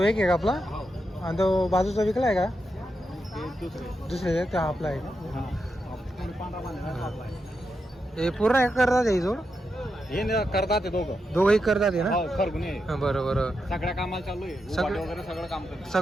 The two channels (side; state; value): both; normal; correlation 0.85